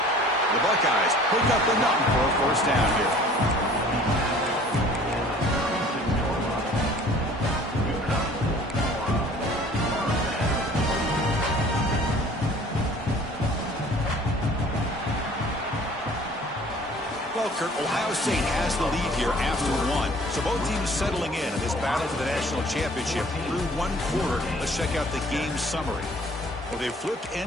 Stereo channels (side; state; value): both; normal; correlation 0.51